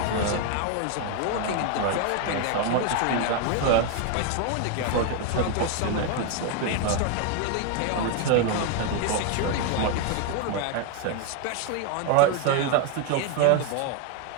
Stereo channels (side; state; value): both; different; correlation 0.01